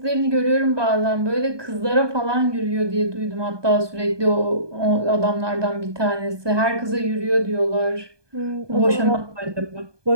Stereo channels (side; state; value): left; late; 1.2 ms